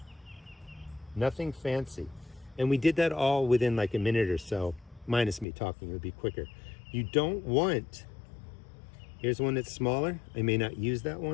Nothing fancy. And we did that all within like a minute or so, minus me talking, it would be quicker. You don't want, here's one that's smaller. I may not use that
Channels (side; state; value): right; drops out; at 5.5 s